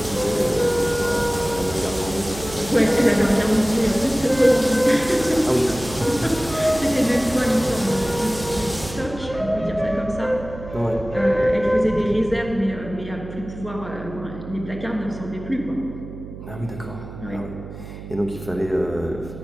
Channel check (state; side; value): noise; right; hum, 13 dB below the sound